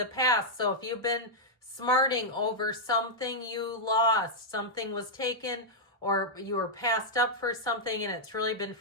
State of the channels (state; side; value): normal; both; correlation -0.06